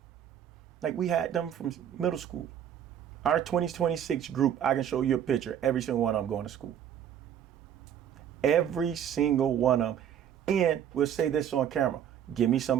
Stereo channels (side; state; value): left; quieter; 9.6 dB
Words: like we had them from middle school. Our 2026 group, I can show you a picture. Every single one of them going to school. Every single one of them. And we'll say this on camera. Give me